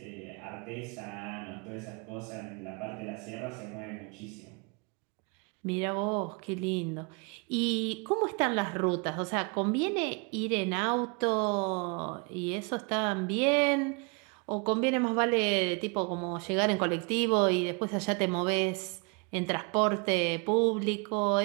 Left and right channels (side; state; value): left; quieter; 32.7 dB